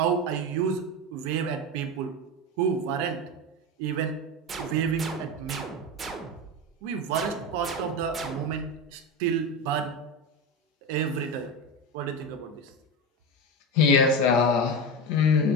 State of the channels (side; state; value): both; normal; correlation 0.19